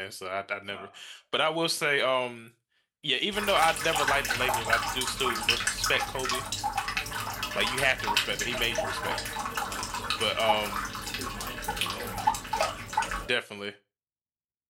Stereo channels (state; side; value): identical; both; correlation 1.00